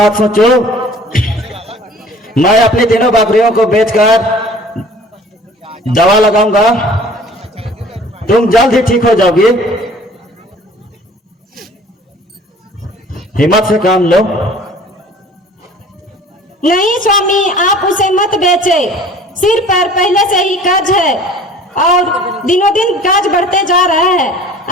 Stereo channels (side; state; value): both; normal; correlation 0.48